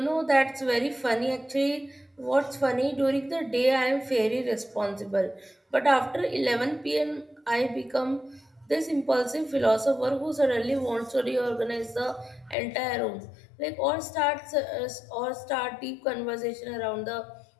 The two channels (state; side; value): drops out; right; at 12.6 s